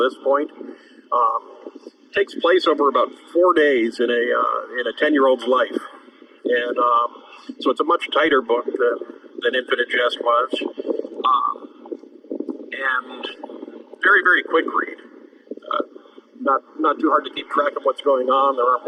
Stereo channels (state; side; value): identical; both; correlation 1.00